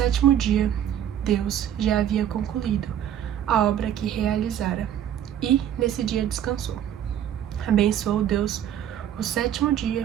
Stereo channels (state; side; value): quieter; left; 10.3 dB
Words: dia, Deus já havia concluído a obra que realizara, e nesse dia descansou. Abençoou Deus o sétimo